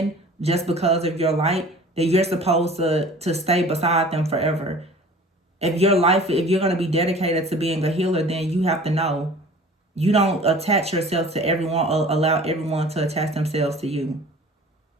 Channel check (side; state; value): both; normal; correlation 0.45